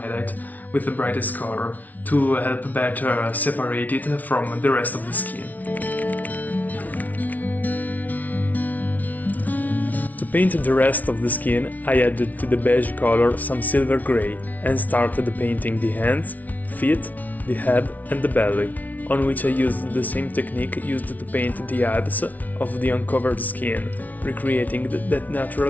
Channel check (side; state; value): right; late; 0.075 ms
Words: with the brightest color, to help better separate it from the rest of the skin. To paint the rest of the skin, I added to the beige color some silver grey and started painting the hands, feet, the head and the belly, on which I used the same technique used to paint the abs of the uncovered skin, recreating that